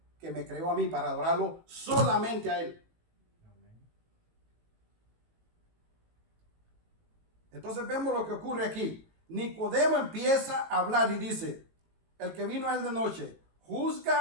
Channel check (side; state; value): left; late; 18 ms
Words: que me creó a mí para adorarlo solamente a Él. Entonces vemos lo que ocurre aquí. Nicodemo empieza a hablar y dice, el que vino a él de noche,